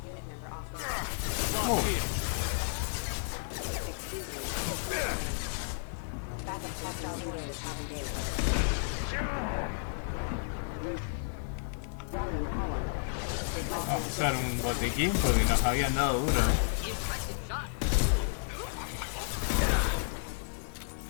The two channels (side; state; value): right; silent; 56 dB below the other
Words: Unit member off. Excuse me. Backup hostile forces have engaged. Vamos a usar un botiquín porque nos habían dado duro.